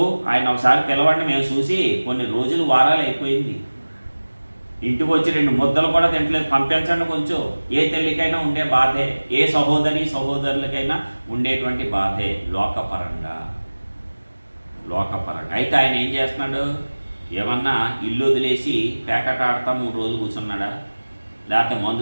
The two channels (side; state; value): both; inverted; correlation -1.00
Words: ఆయన ఒకసారి పిలవండి, మేము చూసి కొన్ని రోజులు వారాలు అయిపోయింది, ఇంటికి వచ్చి 2 ముద్దలు కూడా తింటలేదు, పంపించండి కొంచెం. ఏ తల్లికైనా ఉండే బాధే, ఏ సహోదరులకైనా ఉండేటువంటి బాధే లోకపరంగా. అయితే ఆయన ఏం చేస్తున్నాడు? ఏమన్నా ఇల్లు వదిలేసి పేకట ఆడతా 3 రోజులు కూర్చున్నాడా? లేకపోతే